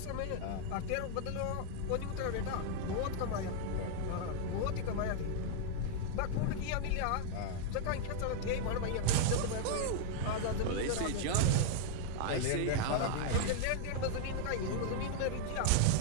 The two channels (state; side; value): different; both; correlation -0.01